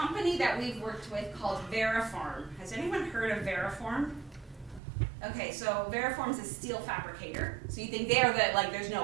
that we've worked with called Veriform. Has anyone heard of Veriform? Okay, so Veriform's a steel fabricator. So you think they're the, like, there's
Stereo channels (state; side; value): drops out; left; at 4.8 s